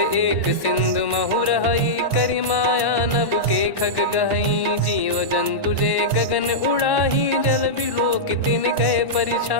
सिंधु महु रहई, करि माया नभ के खग गहई। जीव जंतु जे गगन उड़ाही, जल बिलोक तिन कह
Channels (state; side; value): late; right; 1.1 ms